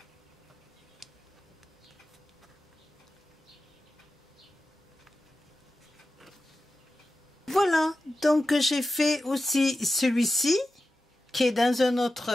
Voilà, donc j'ai fait aussi celui-ci qui est dans un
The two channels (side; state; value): both; normal; correlation 0.93